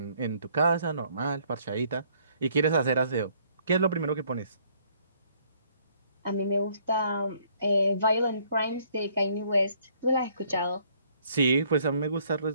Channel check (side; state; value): both; inverted; correlation -0.65